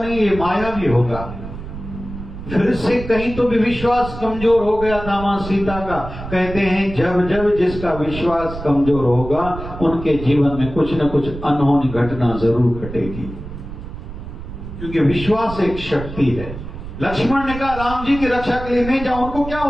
ये मायावी होगा। फिर से कहीं तो भी विश्वास कमजोर हो गया था मां सीता का। कहते हैं जब जब जिसका विश्वास कमजोर होगा, उनके जीवन में कुछ न कुछ अनहोनी घटना जरूर घटेगी, क्योंकि विश्वास एक शक्ति है। लक्ष्मण ने कहा राम जी की रक्षा के लिए नहीं जाऊं, उनको क्या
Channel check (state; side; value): noise; right; rumble, 10 dB below the sound